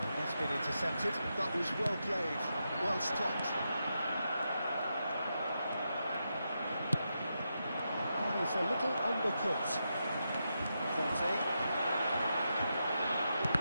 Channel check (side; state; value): both; inverted; correlation -0.86